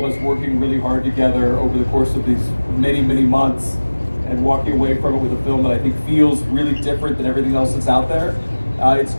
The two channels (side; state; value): both; inverted; correlation -1.00